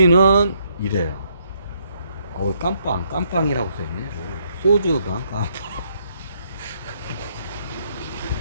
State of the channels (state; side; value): inverted; both; correlation -0.71